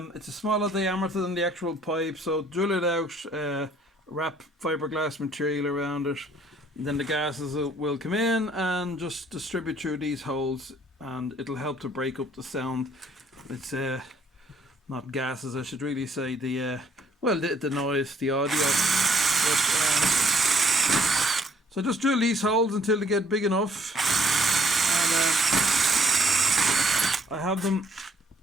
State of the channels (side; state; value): both; normal; correlation 0.64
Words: It's a smaller diameter than the actual pipe, so drill it out, wrap fiberglass material around it, and then the gases will come in and just distribute through these holes, and it'll help to break up the sound. It's not gases, I should really say, the noise, the audio. So just drill these holes until they get big enough, and I have them